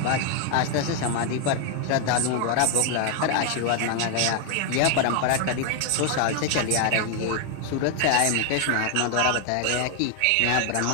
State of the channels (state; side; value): different; both; correlation 0.00